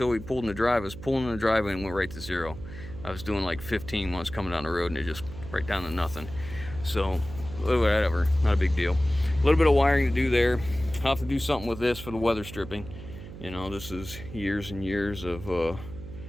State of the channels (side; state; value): right; noise; hum, 13 dB below the sound